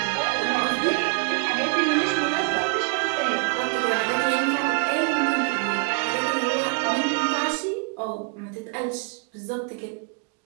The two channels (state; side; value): quieter; left; 34.5 dB